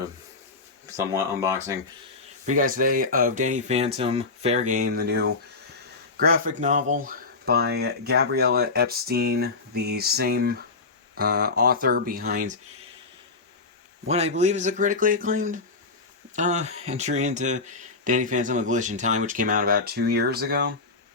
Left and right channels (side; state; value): right; quieter; 3.8 dB